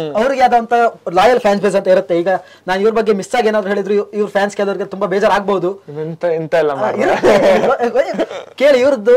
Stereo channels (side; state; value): both; identical; correlation 1.00